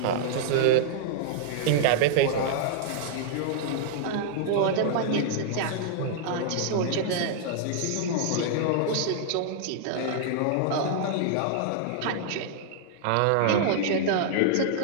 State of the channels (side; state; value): both; different; correlation -0.01